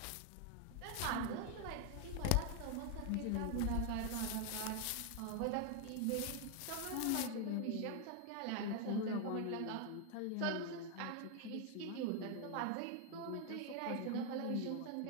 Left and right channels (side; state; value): both; different; correlation 0.00